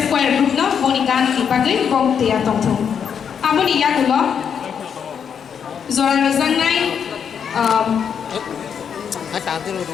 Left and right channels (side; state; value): right; quieter; 7.5 dB